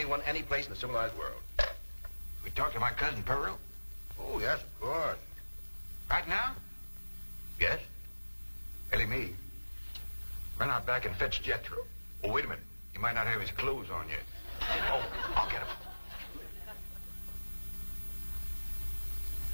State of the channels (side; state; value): both; inverted; correlation -1.00